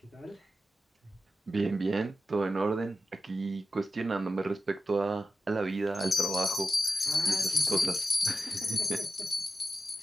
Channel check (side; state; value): both; normal; correlation 0.90